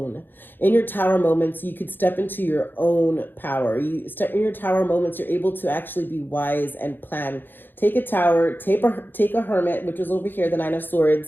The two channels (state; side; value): late; right; 0.095 ms